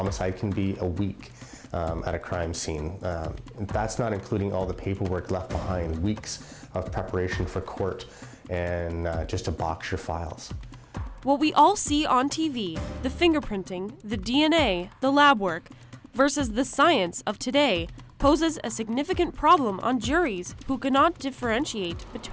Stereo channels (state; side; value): identical; both; correlation 1.00